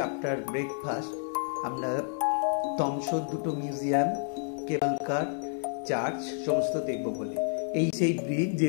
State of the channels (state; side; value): silent; right; digital silence